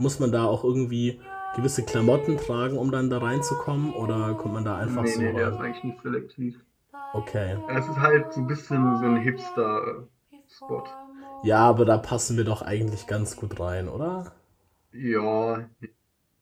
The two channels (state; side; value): identical; both; correlation 1.00